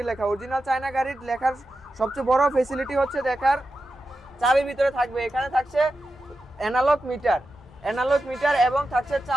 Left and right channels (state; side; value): normal; both; correlation 0.90